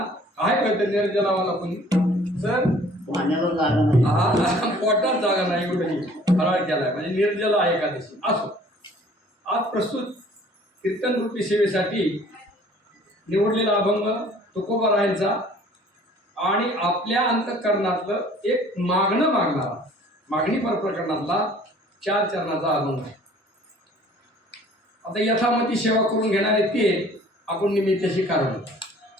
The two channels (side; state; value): both; normal; correlation 0.53